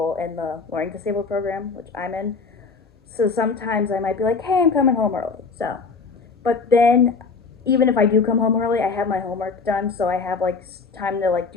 in the Learning Disabled program, which I'm in. So sometimes I might be like, hey, I'm coming home early. So, but then, even if I do come home early, I have my homework done, so I have, like, time to, like,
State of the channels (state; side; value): quieter; right; 4.7 dB